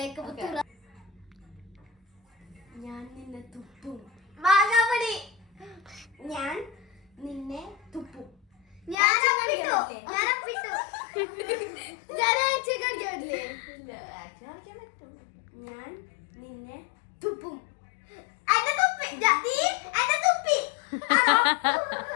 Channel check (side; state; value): right; drops out; at 9.0 s